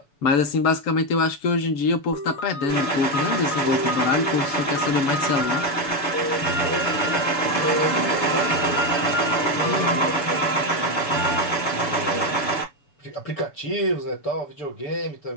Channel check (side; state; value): right; late; 7.0 ms